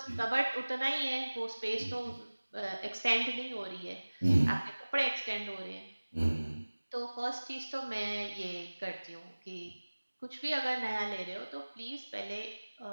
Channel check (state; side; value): inverted; both; correlation -1.00